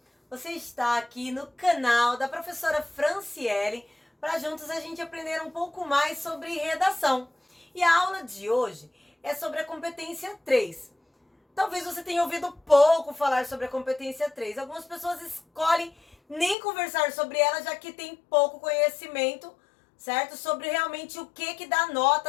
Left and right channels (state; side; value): drops out; right; at 16.6 s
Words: Você está aqui no canal da professora Franciele para juntos a gente aprender um pouco mais sobre redação. E a aula de hoje é sobre a competência 3. Talvez você tenha ouvido pouco falar sobre a competência 3. Algumas pessoas escolhem nem conversar sobre ela, já que tem pouco conhecimento, certo? Sobre realmente o que dá